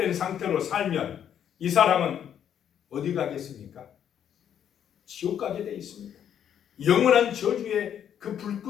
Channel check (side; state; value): right; quieter; 9.3 dB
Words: 상태로 살면 이 사람은 어디 가겠습니까? 지옥 가게 되어 있습니다. 영원한 저주의 그